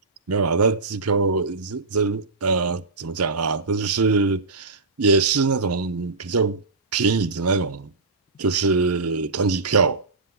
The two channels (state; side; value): quieter; left; 3.8 dB